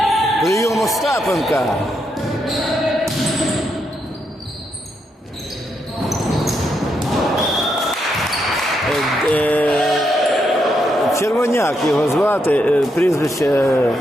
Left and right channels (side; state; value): both; normal; correlation 0.80